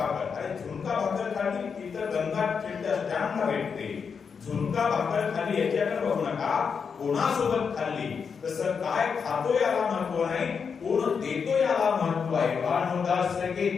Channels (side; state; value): right; quieter; 6.1 dB